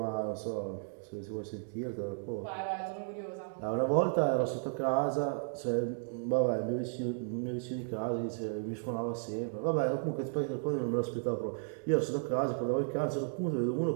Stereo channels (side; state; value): left; silent; digital silence